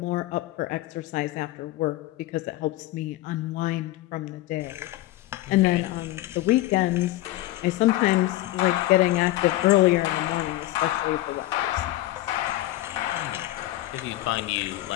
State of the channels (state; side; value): quieter; right; 16.4 dB